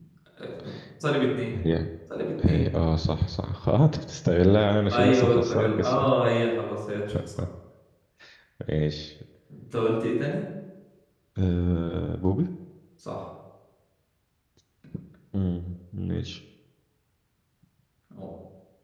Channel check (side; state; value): both; identical; correlation 1.00